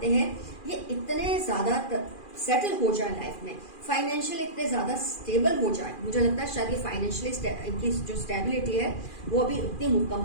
हैं ये इतने ज्यादा सेटल हो जाए लाइफ में, फाइनेंशियल इतने ज्यादा स्टेबल हो जाए। मुझे लगता है शायद ये फाइनेंशियली इनकी जो स्टेबिलिटी है वो अभी उतनी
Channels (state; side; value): late; right; 2.4 ms